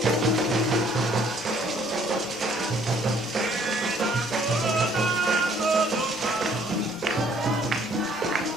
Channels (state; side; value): normal; both; correlation 0.61